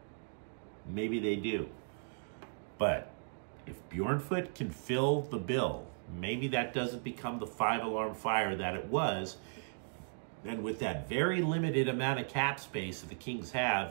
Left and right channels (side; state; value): left; silent; digital silence